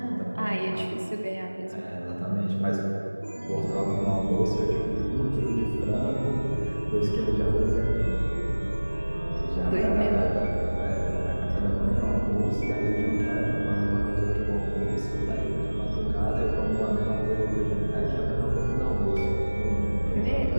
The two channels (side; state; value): both; inverted; correlation -1.00